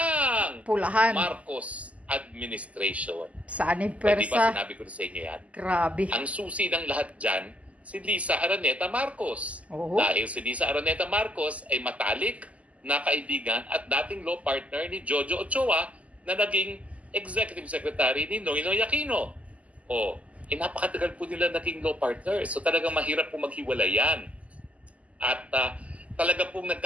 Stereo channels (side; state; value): left; late; 0.069 ms